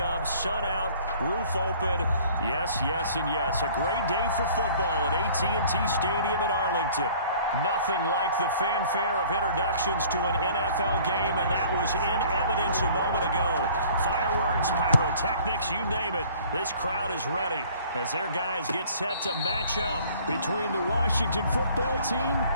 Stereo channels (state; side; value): inverted; both; correlation -0.52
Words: Sun out, roof open. Yes, yes, and yes. A great day for football at AT&T Stadium in Arlington. Nothing like the fanfare of introductions to an NFL game, and that was in evidence a moment ago. Fireworks, pyrotechnics, you name it. This crowd is ready as their guys get set to match up between the Washington football team